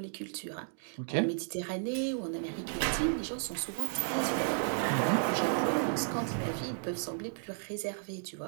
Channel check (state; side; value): silent; left; digital silence